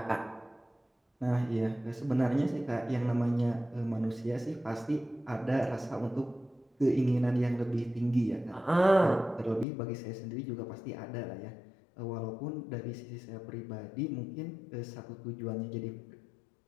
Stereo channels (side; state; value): right; drops out; at 9.7 s